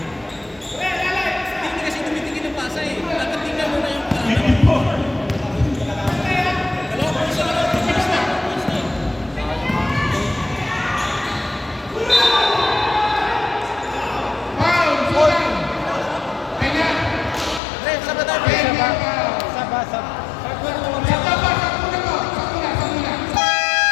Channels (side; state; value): right; drops out; at 17.6 s